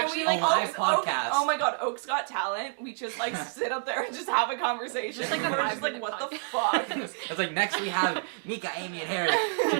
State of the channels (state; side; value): silent; left; 57 dB below the other